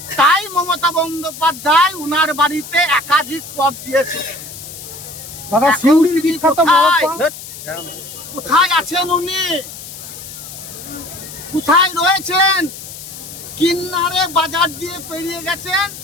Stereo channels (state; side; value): noise; left; hiss, 13 dB below the sound